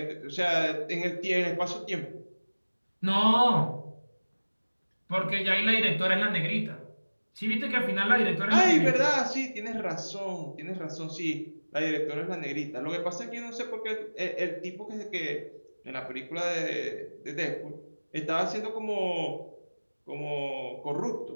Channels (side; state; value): both; inverted; correlation -1.00